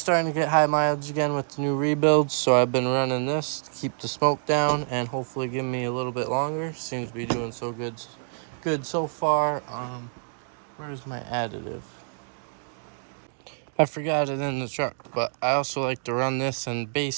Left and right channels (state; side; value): silent; left; digital silence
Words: starting to get high mileage again with the new rebuilds, so I've been running this to keep the smoke down and hopefully give me a little bit longer. Seems to be doing so good so far. Where's my additive? I forgot it in the truck, but I also like to run this in